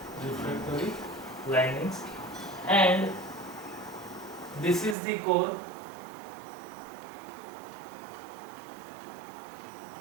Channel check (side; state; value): left; drops out; at 5.0 s